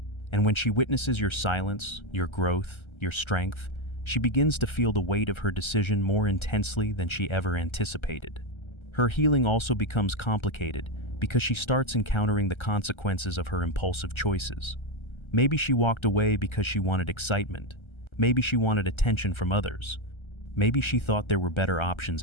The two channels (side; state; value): right; late; 1.3 ms